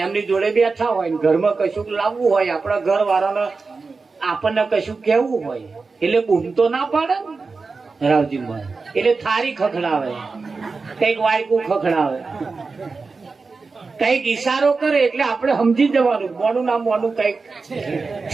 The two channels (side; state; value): left; quieter; 4.3 dB